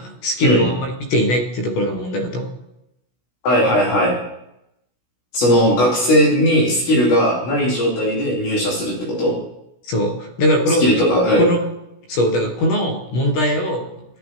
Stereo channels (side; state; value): right; late; 16 ms